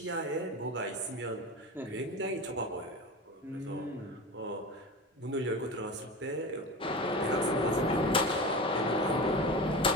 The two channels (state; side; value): normal; both; correlation 0.28